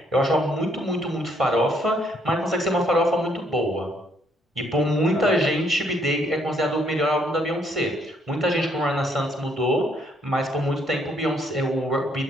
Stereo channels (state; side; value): normal; both; correlation 0.69